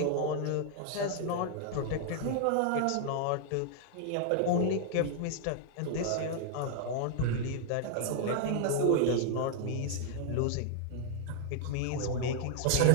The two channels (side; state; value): both; different; correlation 0.00